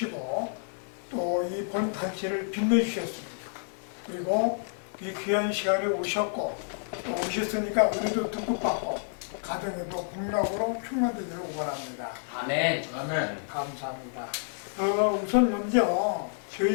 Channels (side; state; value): right; silent; digital silence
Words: 또 이 본 단체를 빛내주셨습니다. 그리고 이 귀한 시간에 오셨고 또 오셨으니까 우리도 듬뿍받고 가정에도 복락으로 충만되기를 원합니다. 아멘. 아멘. 감사합니다. 우선 먼저